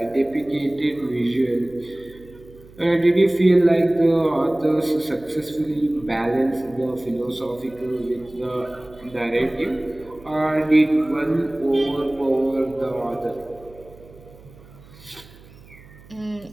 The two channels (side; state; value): right; noise; hum, 22 dB below the sound